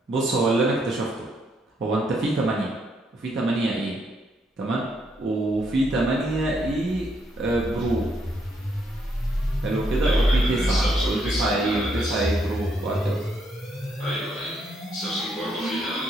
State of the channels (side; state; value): both; normal; correlation 0.74